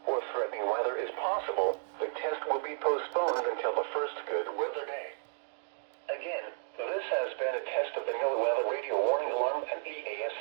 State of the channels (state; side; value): silent; left; digital silence